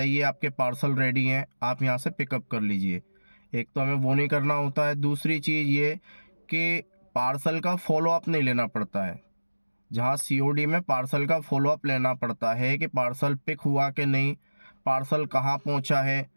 आपके पार्सल रेडी हैं, आप यहाँ से पिकअप कर लीजिए। एक तो हमें वो नहीं करना होता है। दूसरी चीज़ ये कि पार्सल का फॉलो अप नहीं लेना पड़ता है। जहाँ सीओडी में पार्सल का फॉलो अप लेना पड़ता है कि पार्सल पिक हुआ कि नहीं, पार्सल कहाँ पहुँचा है,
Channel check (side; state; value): both; inverted; correlation -1.00